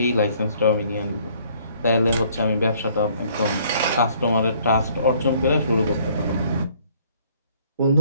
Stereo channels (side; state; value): both; inverted; correlation -0.61